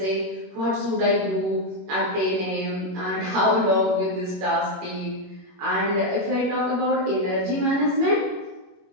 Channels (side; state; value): left; late; 21 ms